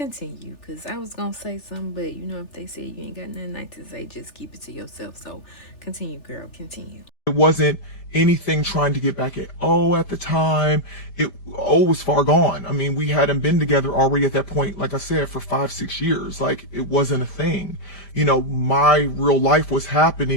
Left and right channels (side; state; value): right; late; 3.4 ms